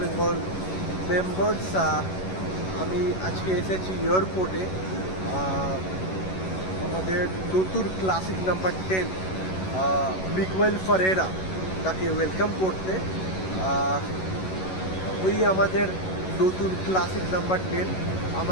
Bengal members. আমি আজকে এসেছি এয়ারপোর্টে আমাদের নতুন ক্লাসিক নাম্বার 10 মিগুয়েল ফারেরা তাকে ওয়েলকাম করতে। ওই আমাদের নতুন ক্লাসিক নাম্বার 10।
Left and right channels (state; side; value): late; right; 11 ms